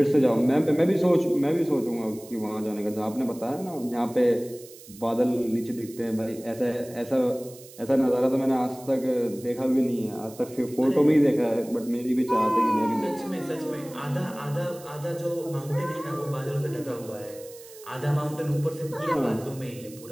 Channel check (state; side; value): noise; right; hiss, 20 dB below the sound